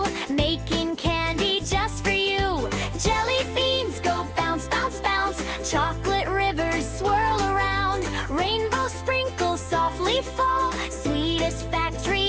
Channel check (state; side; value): identical; both; correlation 1.00